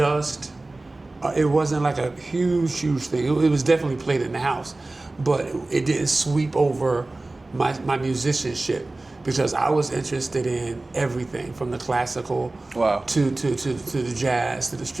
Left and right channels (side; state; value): left; quieter; 3.0 dB